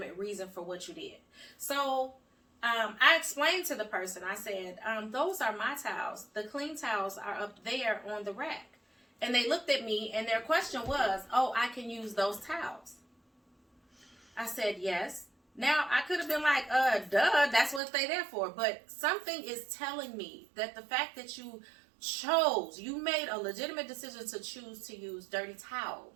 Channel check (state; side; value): drops out; left; at 17.8 s